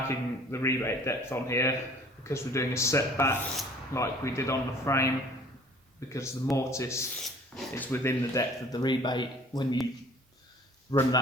the rebate depth on here because we're doing a setback like we did on the frame, because the mortise is within the depth of the rebate. When you run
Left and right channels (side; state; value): both; normal; correlation 0.51